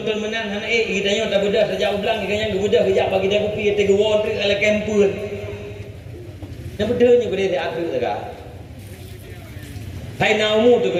menang hana kita yang tak bedah sejak ulang kita yang bedah kejap bagi dia kopi tiga won tu ala kempun yang bedanya ku dia diatur tak Hai naumu tu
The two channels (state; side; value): identical; both; correlation 1.00